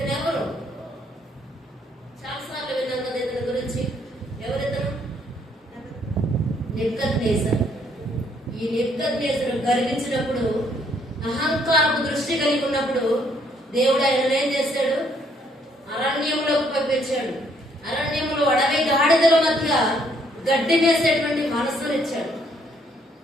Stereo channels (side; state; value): both; normal; correlation 0.68